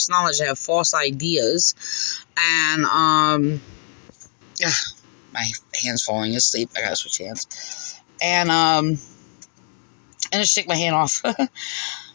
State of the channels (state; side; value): silent; right; digital silence